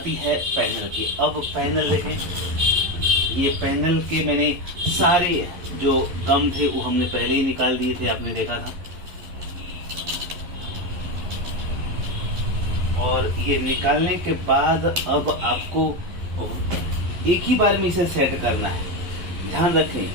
है पैनल की। अब पैनल देखें, ये पैनल के मैंने सारे जो गम थे वो हमने पहले ही निकाल दिए थे, आपने देखा था। और ये निकालने के बाद अब आपको एक ही बार में इसे सेट करना है। ध्यान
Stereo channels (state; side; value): late; left; 11 ms